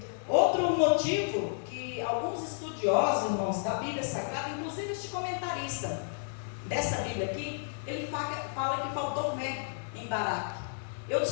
Outro motivo que alguns estudiosos, irmãos, da Bíblia Sagrada, inclusive este comentarista dessa Bíblia aqui, ele fala que faltou fé em Baraque. Eu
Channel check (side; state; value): right; silent; digital silence